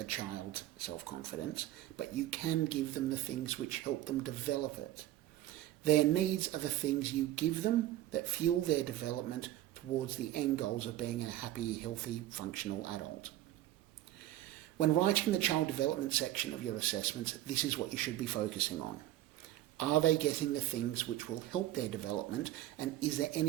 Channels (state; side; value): quieter; left; 14.1 dB